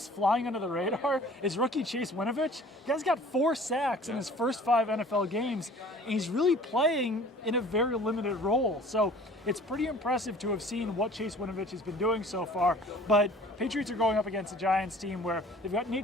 flying under the radar is rookie Chase Winovich. The guy's got 4 sacks in his first 5 NFL games, and he's really playing in a very limited role. So it's pretty impressive to have seen what Chase Winovich has been doing so far. But Patriots are going up against a Giants team where they've got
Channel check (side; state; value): both; normal; correlation 0.49